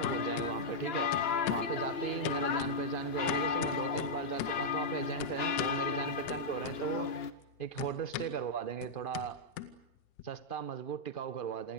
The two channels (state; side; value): late; right; 2.9 ms